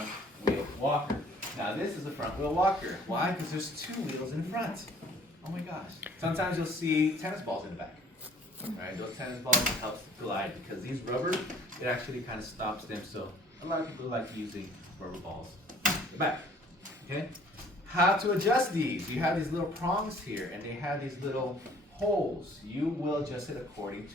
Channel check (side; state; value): both; normal; correlation 0.55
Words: wheel walker. Now this is the front wheel walker. Why? Because there's two wheels in front. Oh my gosh. Sometimes you'll see tennis balls in the back. Right? Those tennis balls help glide because these rubber, it actually kind of stops them. So a lot of people like using rubber balls in the back. Okay? How to adjust these. You have these little prongs here and they have these little holes. You will adjust it according